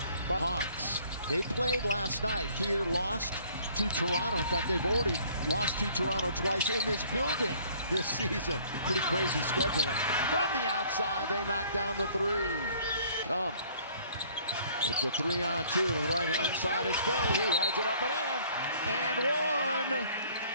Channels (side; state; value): both; inverted; correlation -0.57